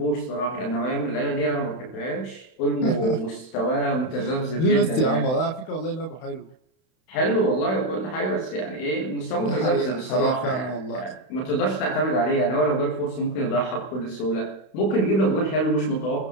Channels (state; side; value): late; right; 31 ms